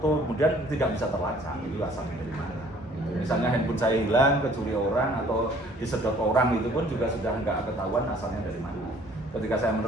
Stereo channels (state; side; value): normal; both; correlation 0.56